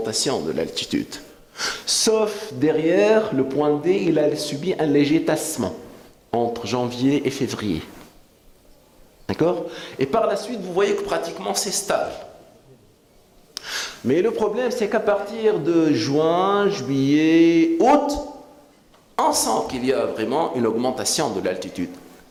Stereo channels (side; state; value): both; identical; correlation 1.00